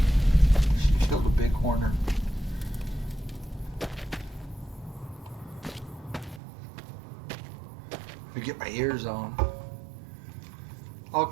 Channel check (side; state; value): left; drops out; at 6.4 s